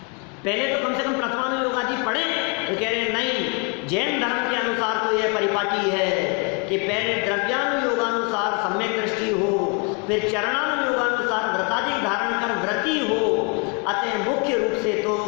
पहले तो कम से कम प्रथमानुयोग आदि पढ़े। तो कह रहे नहीं, जैन धर्म के अनुसार तो यह परिपाटी है कि पहले द्रव्यानुयोगानुसार सम्यक दृष्टि हो, फिर चरणानुयोगानुसार व्रतादि धारण कर व्रती हो। अतः मुख्य रूप से तो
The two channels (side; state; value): right; quieter; 34.3 dB